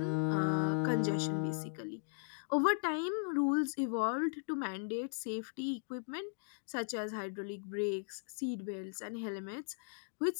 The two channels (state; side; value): silent; right; digital silence